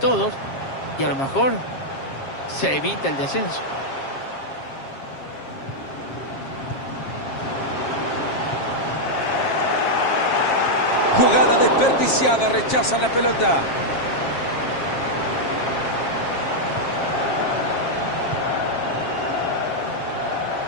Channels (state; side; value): late; right; 7.4 ms